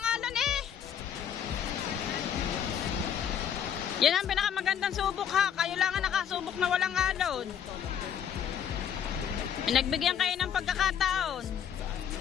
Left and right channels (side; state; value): right; quieter; 8.7 dB